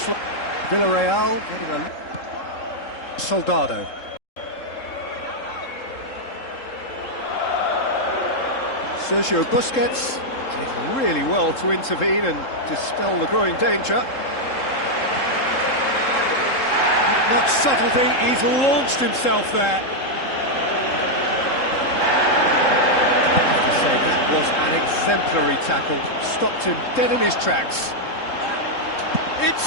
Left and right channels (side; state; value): right; late; 3.7 ms